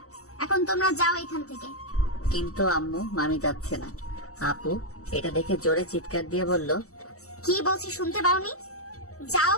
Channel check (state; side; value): late; right; 0.65 ms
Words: এখন তোমরা যাও এখান থেকে। কিন্তু আম্মু মামি যাচ্ছে না। আপু এটা দেখে জোরে চিৎকার দিয়ে বলল, কি বলছি শুনতে পাওনি? যাও